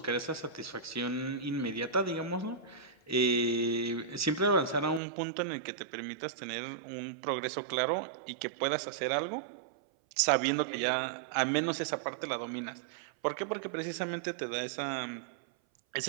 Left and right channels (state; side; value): drops out; left; at 5.0 s